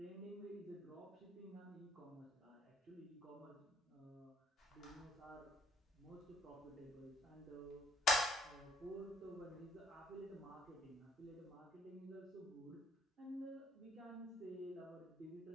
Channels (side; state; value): both; normal; correlation 0.62